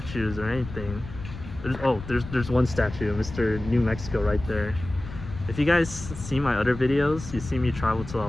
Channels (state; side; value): noise; left; rumble, 11 dB below the sound